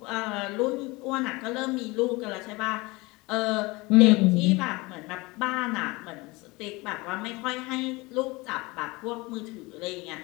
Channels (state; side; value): quieter; right; 23.6 dB